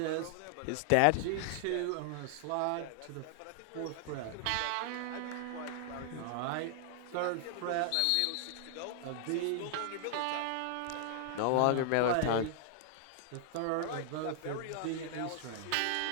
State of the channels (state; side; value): different; both; correlation 0.00